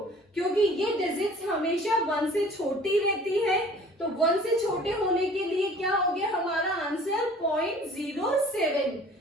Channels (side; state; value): both; normal; correlation 0.49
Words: क्योंकि ये डिजिट्स हमेशा 1 से छोटी रहती है, तो 1 से छोटे होने के लिए क्या हो गया हमारा आंसर? 0.07।